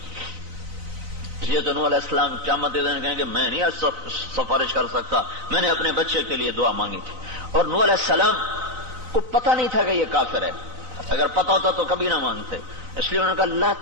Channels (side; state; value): left; late; 4.0 ms